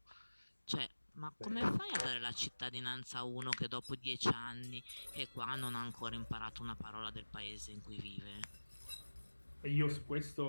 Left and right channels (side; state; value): both; inverted; correlation -1.00